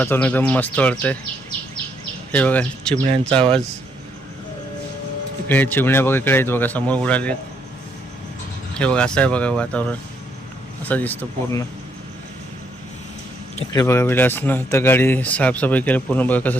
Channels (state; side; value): normal; both; correlation 0.73